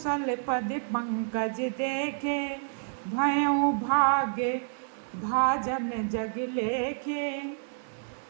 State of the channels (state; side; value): silent; left; 58 dB below the other